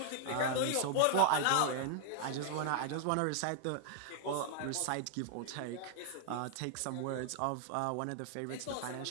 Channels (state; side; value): different; both; correlation 0.00